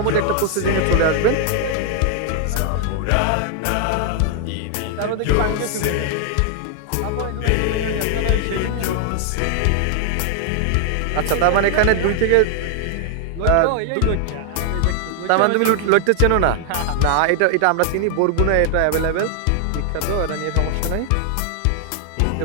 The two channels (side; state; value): both; different; correlation 0.00